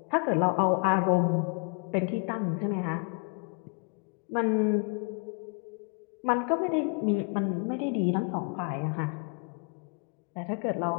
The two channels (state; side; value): quieter; right; 38.6 dB